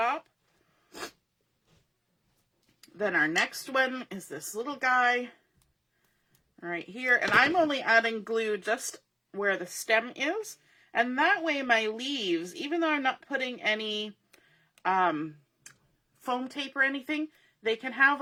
Then our next one is this little guy right here. And I'm only adding glue just where the stem is. And that way my leaves, even though I'm not putting any foam tape or anything, they can have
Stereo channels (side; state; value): both; identical; correlation 1.00